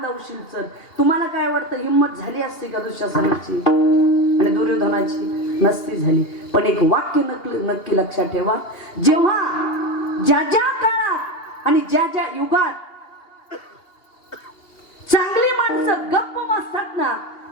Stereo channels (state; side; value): late; right; 2.8 ms